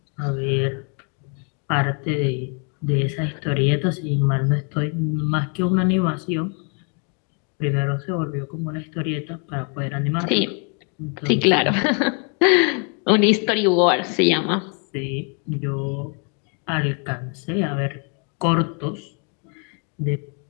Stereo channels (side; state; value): right; quieter; 38.7 dB